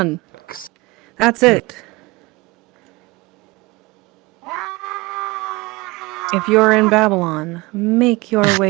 That's it. If you're in Babylon, make your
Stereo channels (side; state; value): left; quieter; 22.8 dB